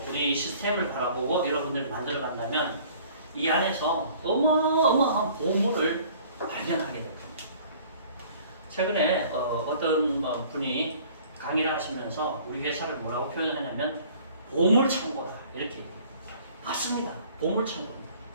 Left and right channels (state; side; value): inverted; both; correlation -0.52